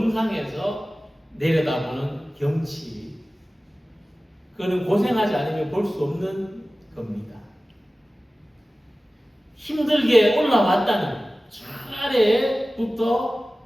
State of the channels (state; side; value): normal; both; correlation 0.96